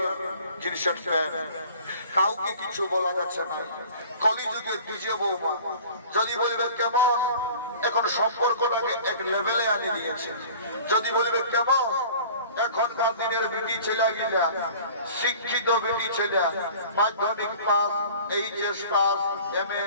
জিনিসের প্যান্ট, কাউকে কিছু বলা যাচ্ছে না। কলিযুগের নিজে বৌমা যদি বলবে কেমন, এখন সম্পর্কটাকে এক লেভেলে আনি দিয়েছে। যদি বলবে কেমন, এখনকার দিনের বেটি ছেলে গিলা, শিক্ষিত বেটি ছেলে, মাধ্যমিক পাস, এইচএস পাস, এমএ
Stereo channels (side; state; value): both; inverted; correlation -0.45